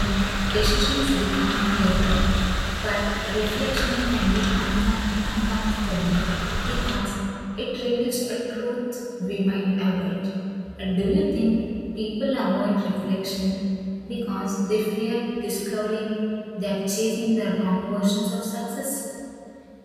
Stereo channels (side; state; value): both; identical; correlation 1.00